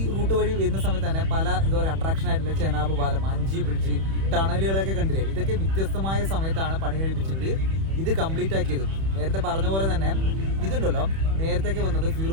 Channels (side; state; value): left; late; 31 ms